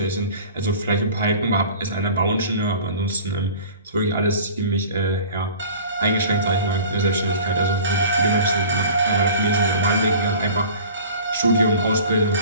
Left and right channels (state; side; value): inverted; both; correlation -0.43